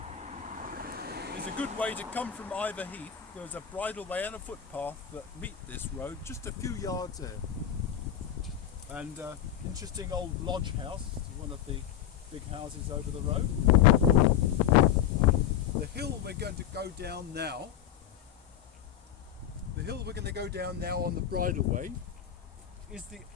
is a good way to come from Iver Heath. There's a bridleway and a footpath that meet this road just a few yards there. And interesting old lodge house, one of the big houses over the road. The hill we're going to go down now, on the bridleway is the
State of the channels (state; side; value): quieter; right; 10.1 dB